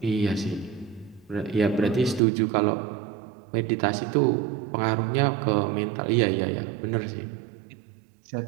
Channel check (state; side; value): drops out; left; at 2.2 s